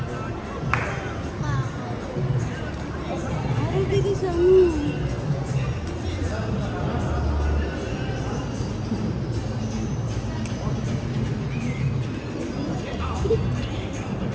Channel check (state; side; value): identical; both; correlation 1.00